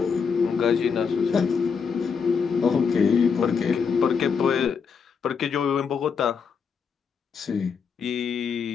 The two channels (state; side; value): quieter; right; 6.0 dB